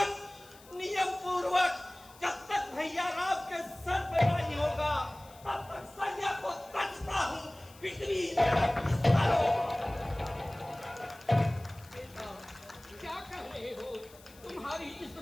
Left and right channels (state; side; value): noise; left; hiss, 23 dB below the sound